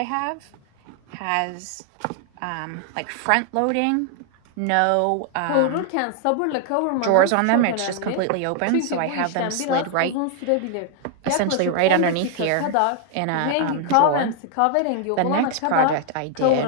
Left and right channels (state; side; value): different; both; correlation 0.00